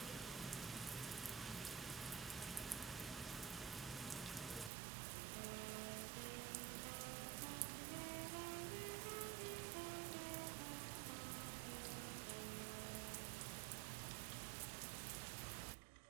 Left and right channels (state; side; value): drops out; left; at 4.7 s